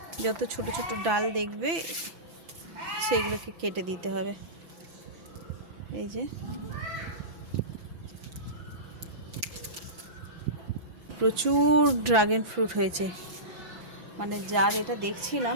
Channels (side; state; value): left; late; 6.0 ms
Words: যত ছোট ছোট ডাল দেখবে সেইগুলোকে কেটে দিতে হবে। এই যে প্রচুর ড্রাগন ফ্রুট হয়েছে, মানে যার এটা